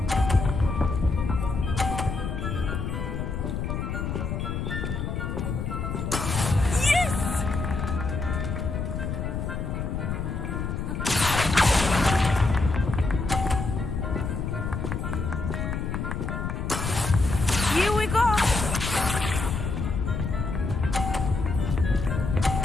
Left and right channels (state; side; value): noise; left; rumble, 3 dB below the sound